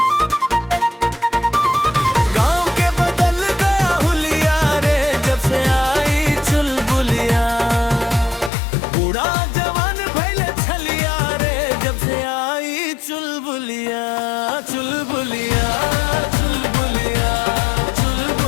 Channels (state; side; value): drops out; right; at 8.5 s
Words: गांव के बदल गया हुलिया रे जब से आई चुलबुलिया। बूढ़ा जवान भइले छलिया रे जब से आई चुलबुलिया। चुलबुलिया चुलबुलिया